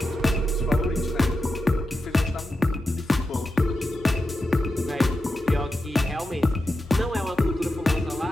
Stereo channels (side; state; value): both; normal; correlation 0.89